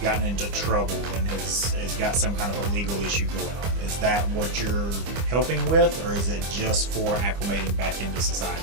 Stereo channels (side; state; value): left; late; 25 ms